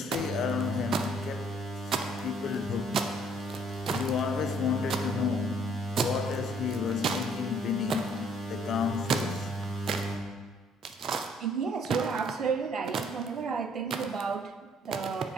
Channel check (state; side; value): normal; both; correlation 0.62